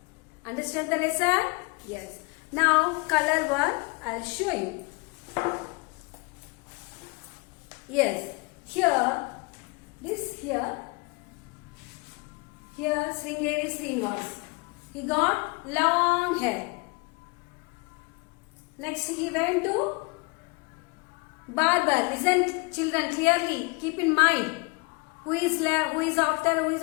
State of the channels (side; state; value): right; quieter; 28.5 dB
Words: Understand the lesson? Yes. Now, color one, I'll show you. Yes, here Sringeri Srinivas. He got long hair. Next he went to barber. Listen, children, clearly keep in mind who is after,